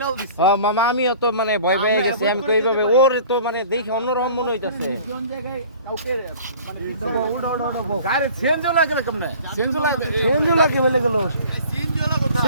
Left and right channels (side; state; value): both; inverted; correlation -0.47